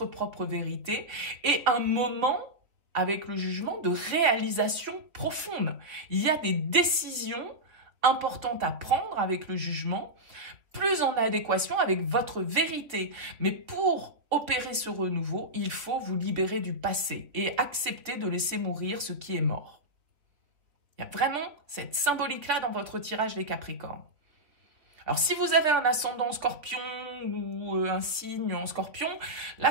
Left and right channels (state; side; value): late; left; 3.5 ms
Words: propre vérité et un moment avec le jugement de réalisation profonde. Il y a des décisions importantes à prendre avec le jugement, plus en adéquation avec votre vérité. Mais pour opérer ce renouveau, il faut vous libérer du passé et accepter de laisser mourir ce qui est mort. Il y a vraiment cette symbolique-là dans votre tirage des Capricornes. Alors, si vous avez un ascendant Scorpion ou un signe en Scorpion, là,